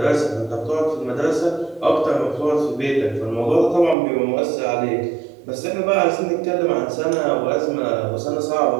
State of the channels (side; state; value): left; drops out; at 4.0 s